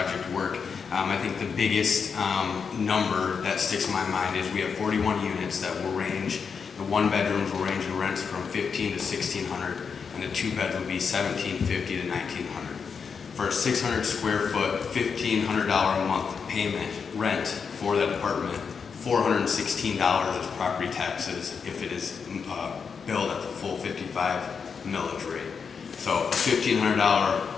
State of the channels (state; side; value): quieter; right; 6.0 dB